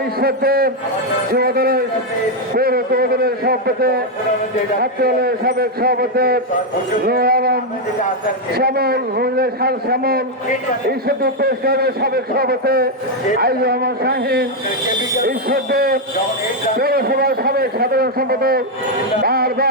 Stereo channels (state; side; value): normal; both; correlation 0.02